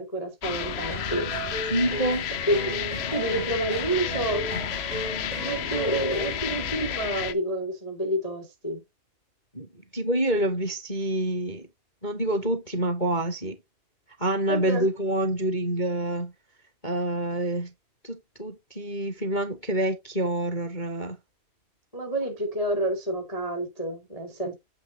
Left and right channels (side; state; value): right; late; 3.0 ms